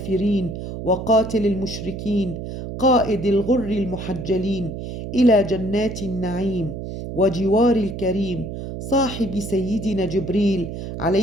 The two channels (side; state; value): right; noise; hum, 7 dB below the sound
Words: وقاتل المشركين، قائد الغر المحجلين إلى جنات النعيم وجوار الكريم، صاحب سيدنا جبريل